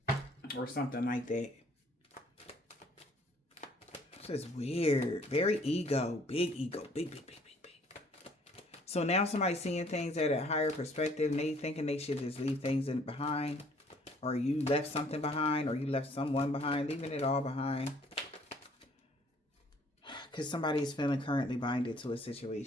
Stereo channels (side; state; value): both; normal; correlation 0.59